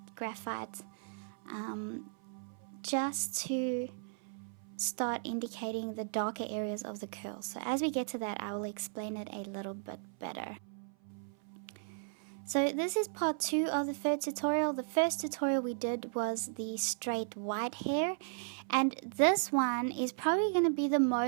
graphite just to start indicating the darker areas of the curl. So as we get to that, I will explain it a little bit better. So this is part 2 of the third tutorial. The first tutorial we did was the straight white hair, and this one is probably going to be the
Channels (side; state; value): left; silent; 54 dB below the other